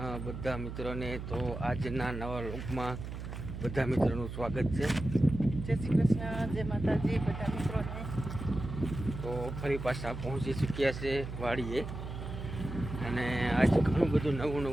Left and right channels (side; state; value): right; noise; hum, 8 dB below the sound